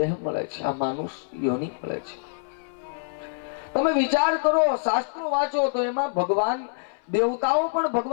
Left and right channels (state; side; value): silent; right; 60 dB below the other